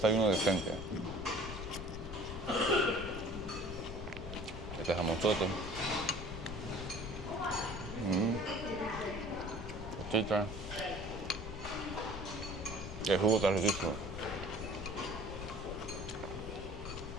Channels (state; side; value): noise; left; rumble, 8 dB below the sound